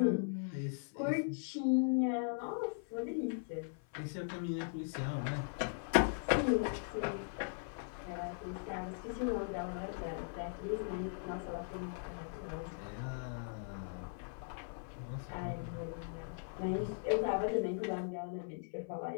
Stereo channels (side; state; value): right; silent; 52 dB below the other